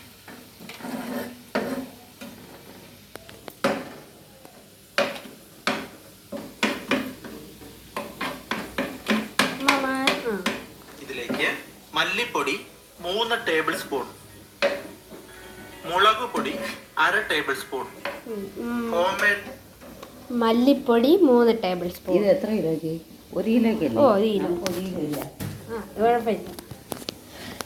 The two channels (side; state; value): both; identical; correlation 1.00